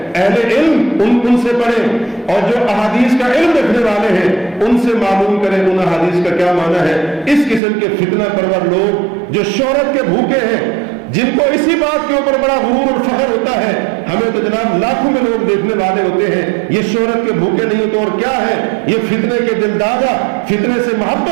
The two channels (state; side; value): drops out; left; at 7.6 s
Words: اہل علم ان سے پڑھیں، اور جو احادیث کا علم رکھنے والے ہیں ان سے معلوم کریں ان احادیث کا کیا معنی ہے۔ اس قسم کے فتنہ پرور لوگ جو شہرت کے بھوکے ہیں، جن کو اسی بات کے اوپر بڑا غرور اور فخر ہوتا ہے ہمیں تو جناب لاکھوں میں لوگ دیکھنے والے ہوتے ہیں، یہ شہرت کے بھوکے نہیں تو اور کیا ہے، یہ فتنے کے دل دادا، فتنے سے